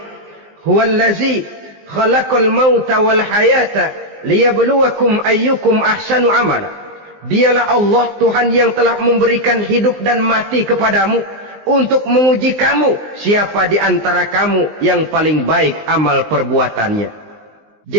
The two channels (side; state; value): left; late; 19 ms